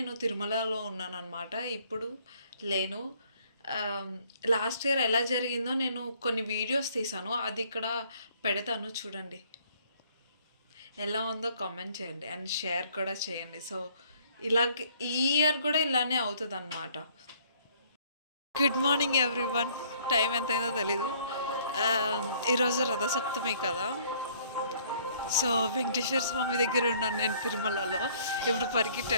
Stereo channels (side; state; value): both; inverted; correlation -0.61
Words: తిరుమలలో ఉన్నానన్నమాట. ఇప్పుడు లేను. లాస్ట్ ఇయర్ ఎలా జరిగిందో నేను కొన్ని వీడియోస్ తీసాను, అది ఇక్కడ పెడతాను చూడండి. ఎలా ఉందో కామెంట్ చేయండి అండ్ షేర్ కూడా చేయండి. సో ఇలాగే ఈ ఇయర్ కూడా ఇలానే అవుతుంది అన్నమాట. Good morning everyone. టైం ఎంతైందో తెలీదు. ఈరోజు రథసప్తమి కదా, సో వెంకటేశ్వర స్వామి దగ్గర ఉన్నాను నేను తిరుమలలో. ఇప్పుడు పరిగెట్టి